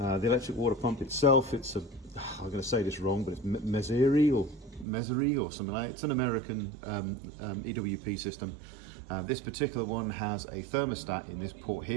electric water pump itself, it's I'm going to say this wrong, but it's Meseri or something like that. It's an American EWP system. This particular one has a thermostat in this port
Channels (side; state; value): left; drops out; at 4.9 s